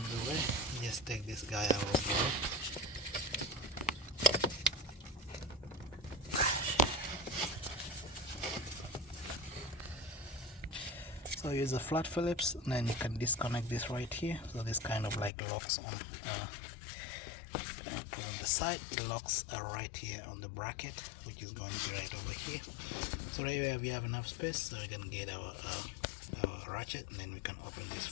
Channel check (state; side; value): drops out; right; at 15.3 s